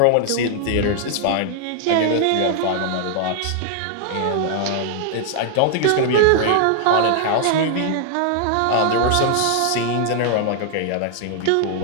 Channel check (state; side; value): different; both; correlation 0.00